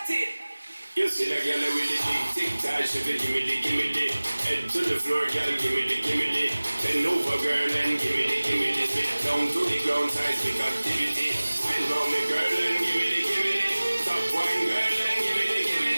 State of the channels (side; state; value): both; inverted; correlation -1.00